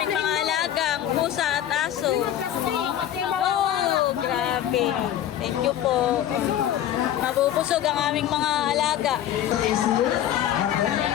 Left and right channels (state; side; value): quieter; right; 11.3 dB